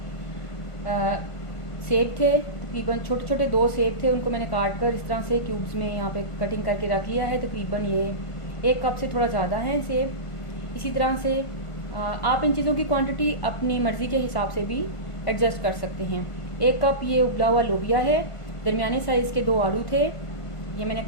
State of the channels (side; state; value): right; late; 1.5 ms